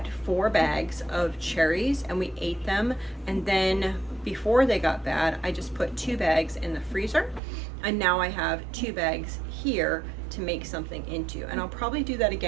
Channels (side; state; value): left; drops out; at 7.4 s